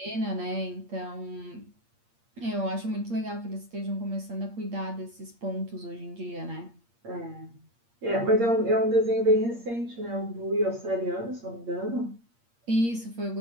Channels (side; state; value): left; late; 8.6 ms